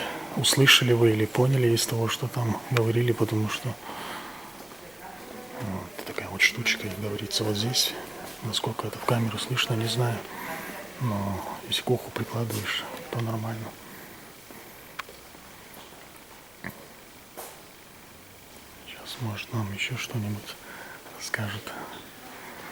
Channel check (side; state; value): left; noise; rumble, 30 dB below the sound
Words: услышали вы или поняли из того, что там говорили, потому что вот такая вот штучка, как говорится, вот здесь. Насколько это в камеру слышно, не знаю. Но если к уху прикладываешь, то нормально. Сейчас, может, нам еще что-нибудь расскажет.